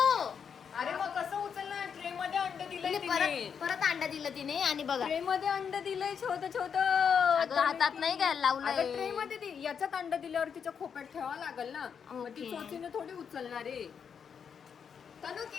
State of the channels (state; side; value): quieter; right; 7.0 dB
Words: अरे मग कसं उचलणार? ट्रे मध्ये अंड दिलंय तिने. परत अंड दिलं तिने. आणि बघा ट्रे मध्ये अंड दिलंय छोटं छोटं. हातात नाही घ्यायला लावलंय. ट्रे मध्ये याच्यात अंड दिल्यावर तिच्या खोप्यात ठेवावं लागेल ना. मग ती ओके. चोचीने थोडी उचलणार आहे. तनु